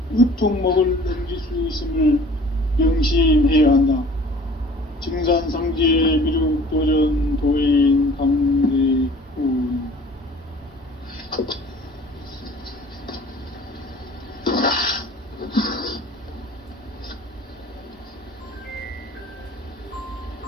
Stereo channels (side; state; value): both; normal; correlation 0.48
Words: 으통목을 넘길 수 있음을 명심해야 한다. 증산상제 미륵도전 도인 강대훈.